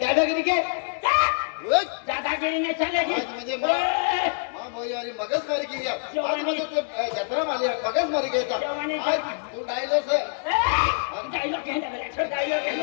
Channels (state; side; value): silent; right; digital silence